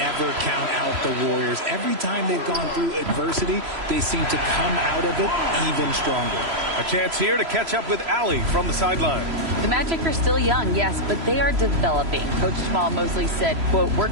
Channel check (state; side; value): late; left; 3.0 ms